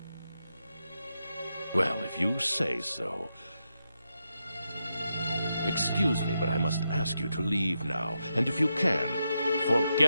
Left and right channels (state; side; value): inverted; both; correlation -0.85